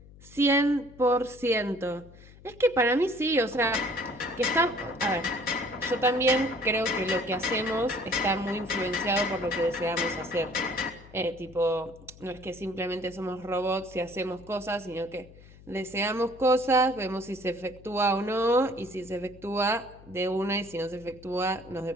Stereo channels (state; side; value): noise; left; hum, 21 dB below the sound